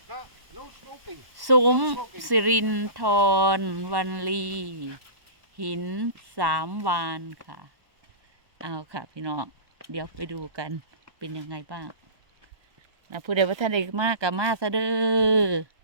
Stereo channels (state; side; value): late; left; 1.1 ms